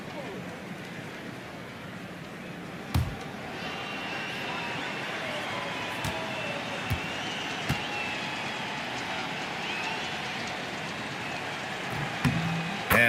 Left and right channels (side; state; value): both; identical; correlation 1.00